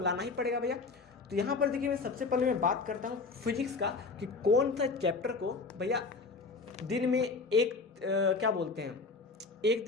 ही पड़ेगा भैया। तो यहाँ पर देखिए, मैं सबसे पहले मैं बात करता हूँ फिजिक्स का, कि कौन सा चैप्टर को भैया दिन में क्या बोलते हैं, एक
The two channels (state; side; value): quieter; right; 4.1 dB